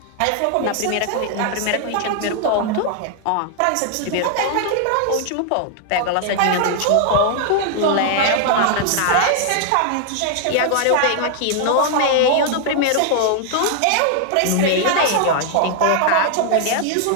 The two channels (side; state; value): both; different; correlation 0.00